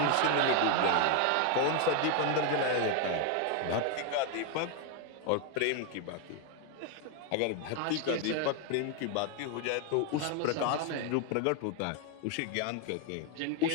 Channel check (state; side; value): different; both; correlation 0.01